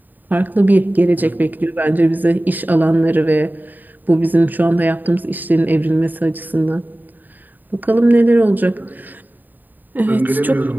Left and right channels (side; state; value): left; late; 0.088 ms